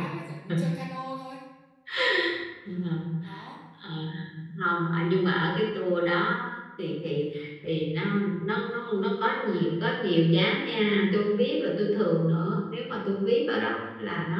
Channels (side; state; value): both; identical; correlation 1.00